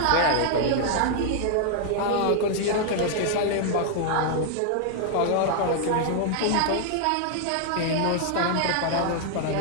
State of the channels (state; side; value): different; both; correlation -0.01